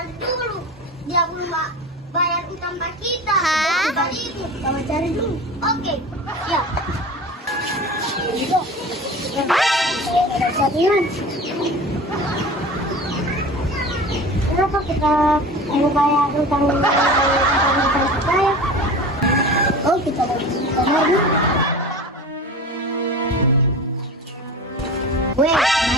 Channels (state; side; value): normal; both; correlation 0.35